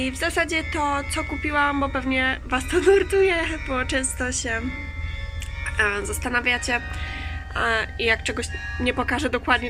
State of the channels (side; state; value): both; identical; correlation 1.00